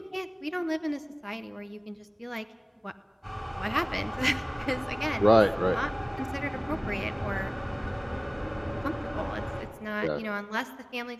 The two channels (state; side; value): identical; both; correlation 1.00